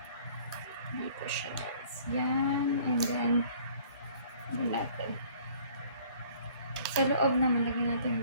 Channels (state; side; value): inverted; both; correlation -0.54